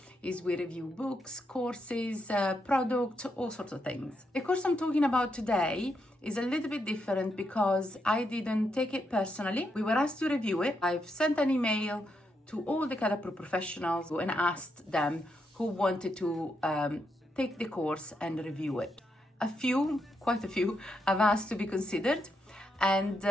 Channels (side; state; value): both; normal; correlation 0.81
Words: is we review books, courses, products, all sorts of things. The course I'm talking about today is a little bit different because I didn't take it personally. We were asked to review it. I've sent an email to all the KAD Approved Professionals and asked them who wanted to take the course and review it. Quite a few, have asked to be considered, and